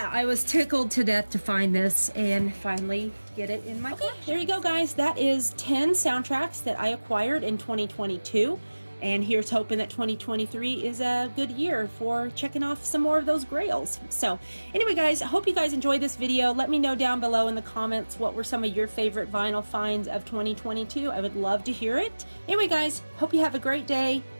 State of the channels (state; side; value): inverted; both; correlation -1.00